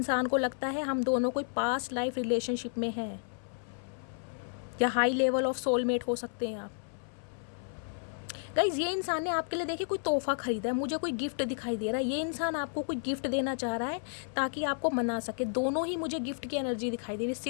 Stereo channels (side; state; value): right; silent; 56 dB below the other